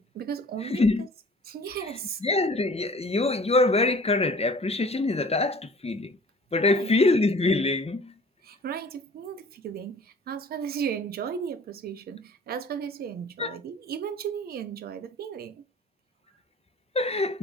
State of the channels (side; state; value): both; normal; correlation 0.48